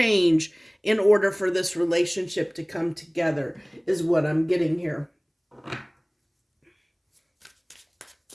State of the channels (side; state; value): both; identical; correlation 1.00